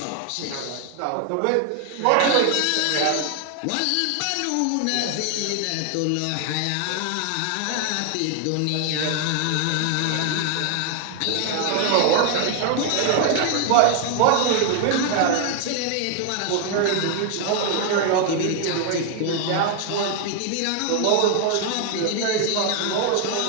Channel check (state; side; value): different; both; correlation 0.00